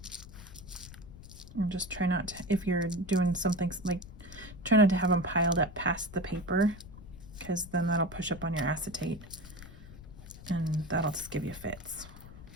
And just try not to, if you're doing something like, try not to have them piled up past the paper, because then that'll push up on your acetate and that'll just give you fits.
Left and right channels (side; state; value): left; noise; rumble, 16 dB below the sound